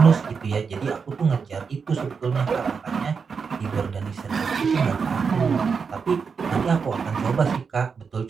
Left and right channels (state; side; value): quieter; left; 5.7 dB